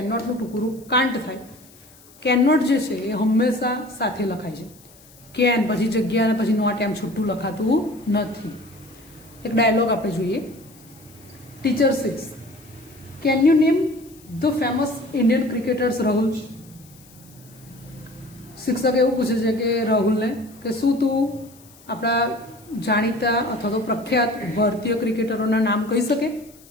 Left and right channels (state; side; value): noise; left; hiss, 25 dB below the sound